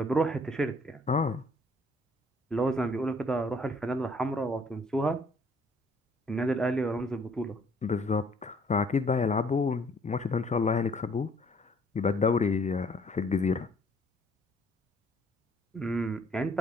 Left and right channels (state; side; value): normal; both; correlation 0.61